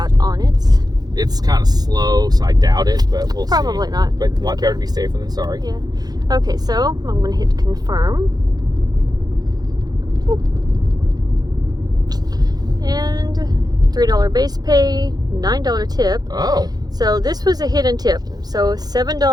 on it. It's kind of slow, so I doubt it, but we'll Probably see. not. But better to be safer than sorry. Yeah. Okay, so I'm going to hit confirm. Oop. And $3 base pay, $9 tip. Oh. So this was a hidden tip. So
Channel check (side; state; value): left; late; 0.19 ms